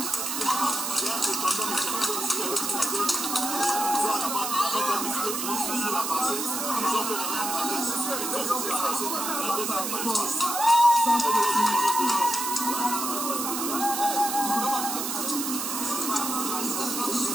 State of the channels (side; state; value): right; noise; hiss, 3 dB below the sound